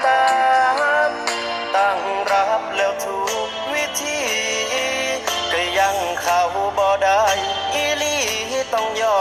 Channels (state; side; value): identical; both; correlation 1.00